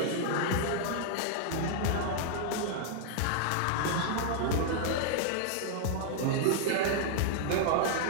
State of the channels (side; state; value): both; different; correlation -0.01